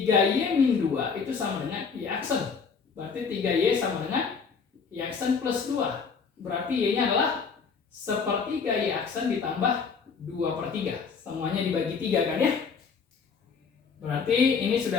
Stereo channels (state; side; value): quieter; right; 5.6 dB